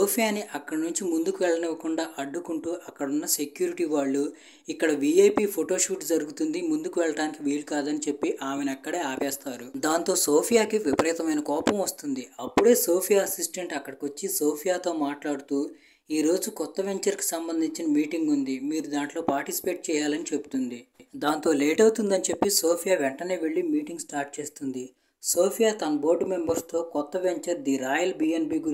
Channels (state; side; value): identical; both; correlation 1.00